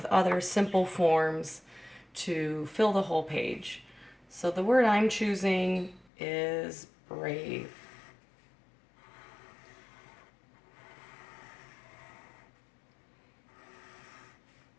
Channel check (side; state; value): right; drops out; at 6.1 s